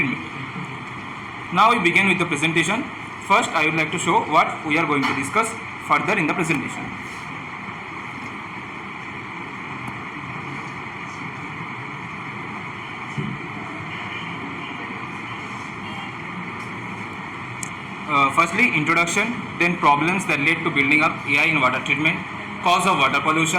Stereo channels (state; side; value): identical; both; correlation 1.00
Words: Now we begin with the presentation. First, I would like to show what we are going to discuss further in the presentation. Firstly, introduction, then problems that led to building up AI in water treatment, cause of water